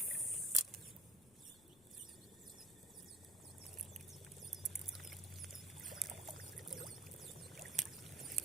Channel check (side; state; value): left; noise; rumble, 24 dB below the sound